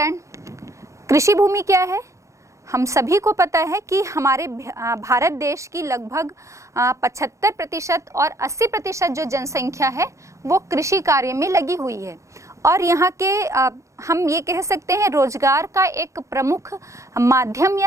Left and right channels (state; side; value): late; left; 0.15 ms